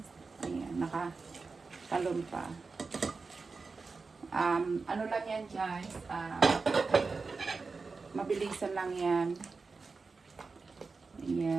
Ayan. Nakatalon pa. Ano lang yan, guys, mabilisan lang yan.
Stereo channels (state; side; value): quieter; left; 4.3 dB